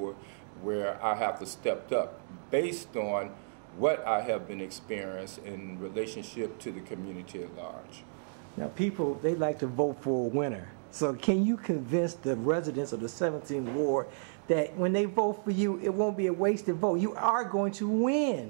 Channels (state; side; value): silent; left; digital silence